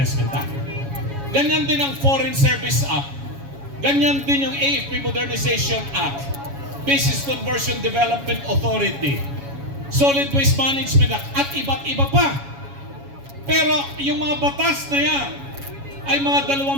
Act. Ganyan din ang Foreign Service Act. Ganyan din yung AFP Modernization Act, Business Conversion Development Authority, Solid Waste Management Act, at iba't iba pa. Pero yung mga batas na yan ay mga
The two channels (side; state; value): left; late; 7.2 ms